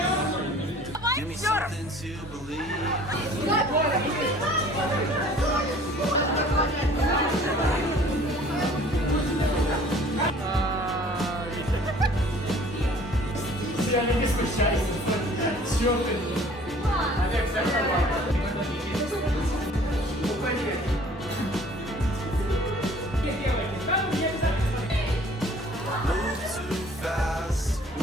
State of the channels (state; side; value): normal; both; correlation 0.52